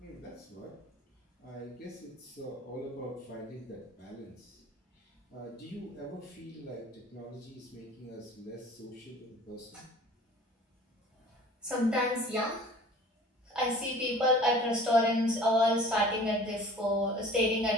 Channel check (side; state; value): both; normal; correlation 0.46